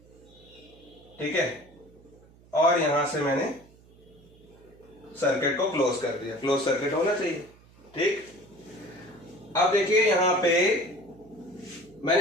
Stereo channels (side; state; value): right; noise; hum, 26 dB below the sound